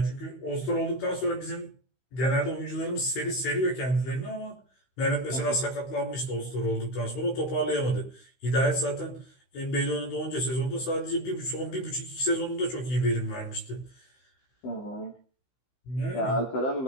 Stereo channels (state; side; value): late; right; 15 ms